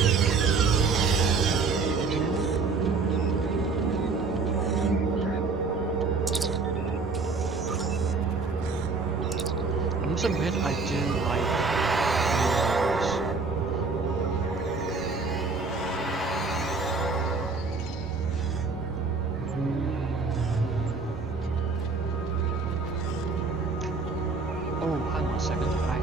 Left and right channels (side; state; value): left; quieter; 4.3 dB